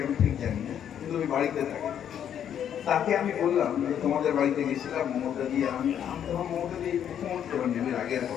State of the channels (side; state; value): right; quieter; 9.4 dB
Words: আমি ঠিক জানি না, কিন্তু ওই বাড়িতে থাকে। তাকে আমি বললাম যে তোমাদের বাড়িতে গেছিলাম মমতা দিয়ে, আমি তখন মমতা দিয়ে মুখ্যমন্ত্রী হন আগের